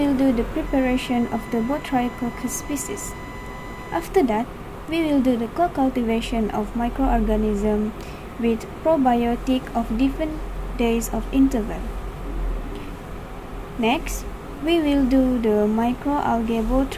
do the preparation of the Botryococcus species. After that, we will do the co-cultivation of microorganisms with probiotic of different days of interval. Next, we will do the microalgae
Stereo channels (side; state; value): both; identical; correlation 1.00